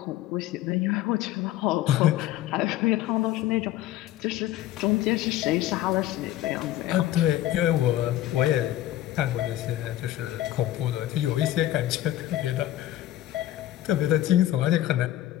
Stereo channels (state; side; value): quieter; right; 13.9 dB